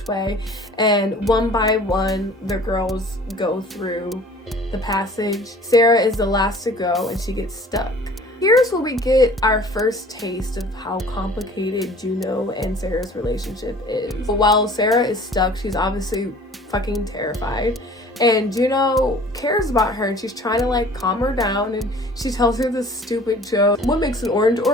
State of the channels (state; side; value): normal; both; correlation 0.48